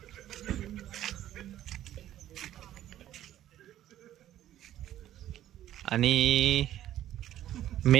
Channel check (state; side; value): quieter; left; 12.6 dB